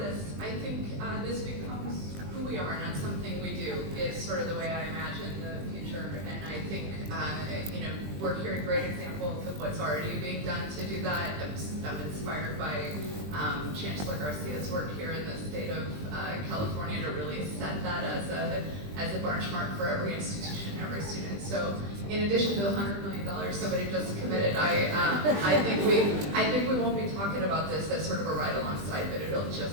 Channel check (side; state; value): left; late; 20 ms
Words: I think this becomes who we are, not something we do. Is sort of the way I imagine the future. And I think, we're hearing great examples of what's already being done to do that. I'm inspired by Chancellor Garcia's work here in the state of California to really set that as a benchmark for every institution, every student. So in addition to the $100 million somebody just committed, I think we won't be talking about this as sort of a ride alongside, but it'll